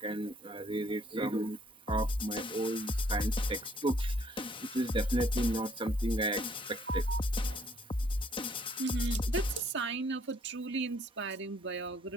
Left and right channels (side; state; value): both; normal; correlation 0.64